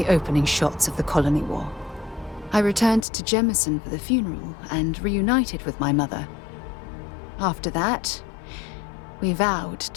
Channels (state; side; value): drops out; right; at 3.1 s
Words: opening shots of the Colony War. I returned to Jemison for the funeral and reunited with my mother. After that, we vowed